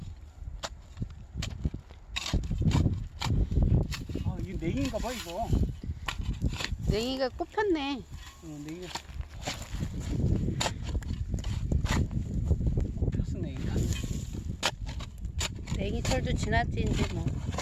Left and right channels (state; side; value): identical; both; correlation 1.00